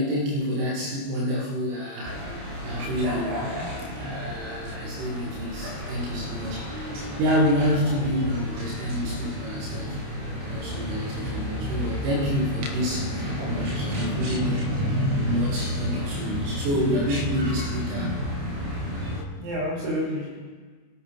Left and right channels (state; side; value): late; left; 29 ms